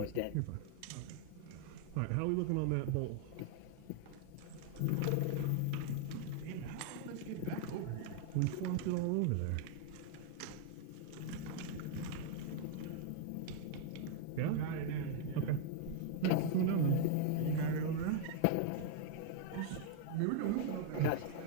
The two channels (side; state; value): both; different; correlation 0.00